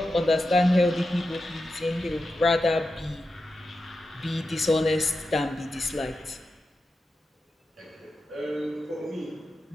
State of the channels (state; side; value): normal; both; correlation 0.90